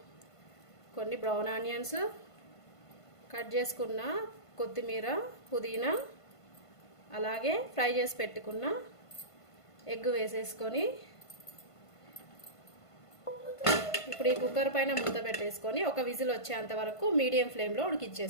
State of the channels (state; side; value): late; right; 1.5 ms